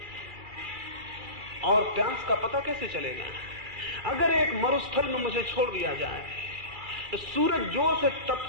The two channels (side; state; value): left; late; 2.3 ms